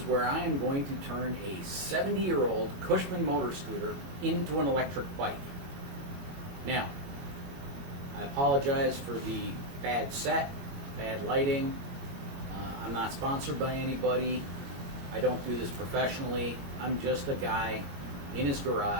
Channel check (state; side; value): late; left; 21 ms